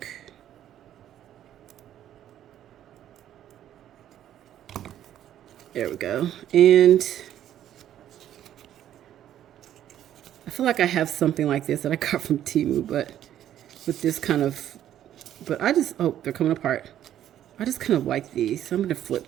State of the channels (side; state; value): left; quieter; 11.3 dB